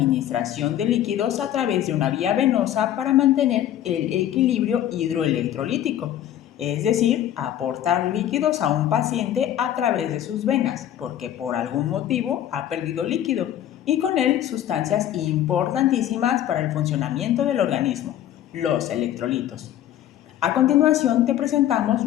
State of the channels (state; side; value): quieter; right; 11.6 dB